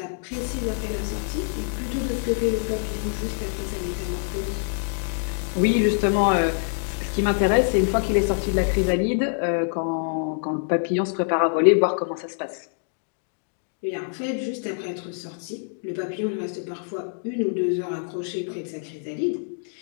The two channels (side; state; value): right; silent; digital silence